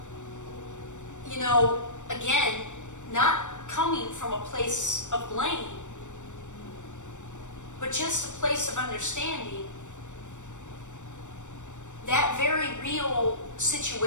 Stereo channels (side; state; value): right; late; 0.85 ms